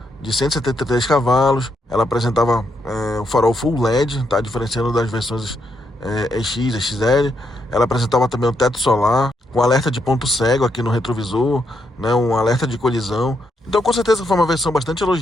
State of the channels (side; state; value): both; normal; correlation 0.79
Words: de 173 cavalos. Ela apresentava o farol Full LED, tá? Diferenciando das versões EX, XL. Ela apresentava também o teto solar, com alerta de ponto cego aqui no retrovisor, né? Um alerta de colisão. Então, com certeza foi uma versão bastante